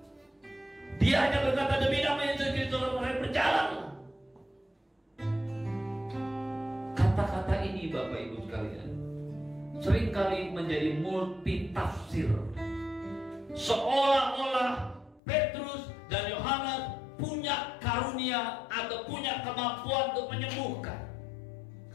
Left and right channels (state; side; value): drops out; right; at 15.2 s